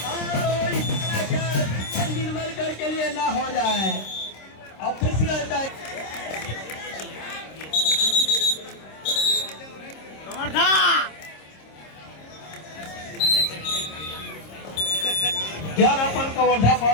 निर्मल कर के लिए ना हो जाए ऑफिशियल क्या अपन कवर्धा पा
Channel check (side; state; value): right; late; 26 ms